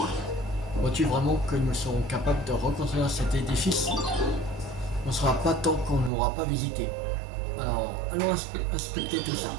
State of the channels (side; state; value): left; drops out; at 6.1 s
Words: Vois-tu vraiment que nous serons capables de reconstruire cet édifice? On ne sera pas tant qu'on n'aura pas visité. Alors, allons inspecter tout ça.